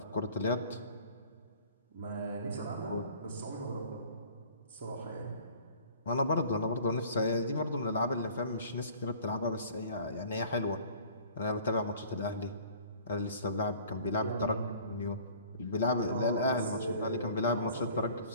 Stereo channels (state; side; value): inverted; both; correlation -0.50